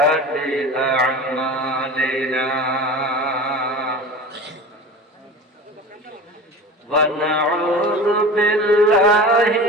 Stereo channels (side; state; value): both; normal; correlation 0.35